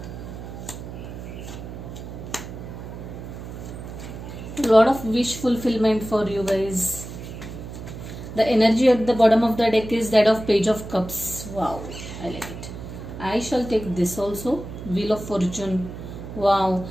A lot of wish fulfillment for you guys. The energy at the bottom of the deck is that of Page of Cups. Wow, I like it. I shall take this also. Wheel of Fortune. Wow.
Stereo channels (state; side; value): noise; right; hum, 10 dB below the sound